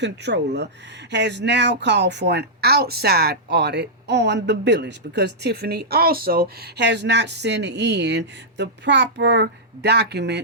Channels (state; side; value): normal; both; correlation -0.12